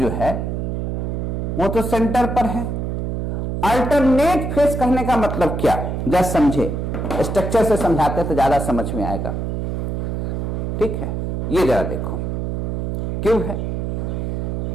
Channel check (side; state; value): right; noise; hum, 2 dB below the sound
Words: है वो तो सेंटर पर है। अल्टरनेट फेस कहने का मतलब क्या, जरा समझे, स्ट्रक्चर से समझाते तो ज्यादा समझ में आएगा, ठीक है। ये जरा देखो, क्यों है